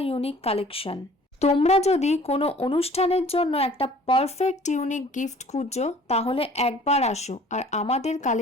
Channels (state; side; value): normal; both; correlation 0.51